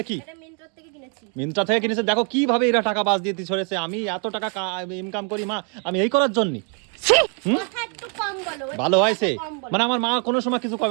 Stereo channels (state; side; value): quieter; left; 39.9 dB